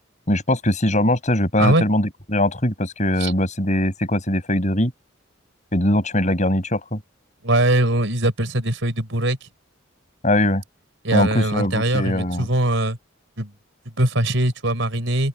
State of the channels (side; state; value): both; normal; correlation 0.49